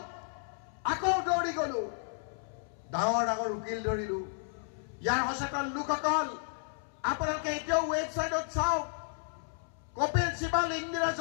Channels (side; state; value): right; silent; 56 dB below the other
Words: আকৌ দৌৰি গলো, ডাঙৰ ডাঙৰ উকিল ধৰিলো। ইয়াৰ সচেতন লোকসকল আপোনালোকে এতিয়াও ৱেবছাইটত চাওক, কপিল সিবাল, ইন্দিৰা